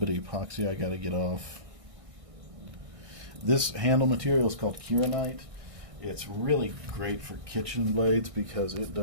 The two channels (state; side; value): late; left; 1.6 ms